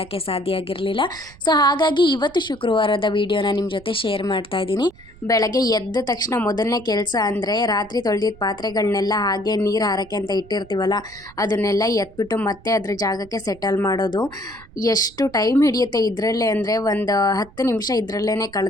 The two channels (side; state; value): right; noise; rumble, 23 dB below the sound